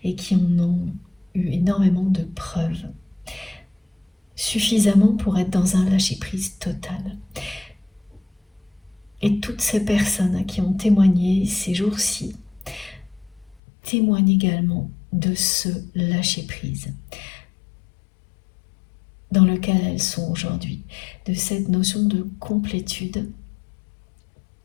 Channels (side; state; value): right; drops out; at 13.6 s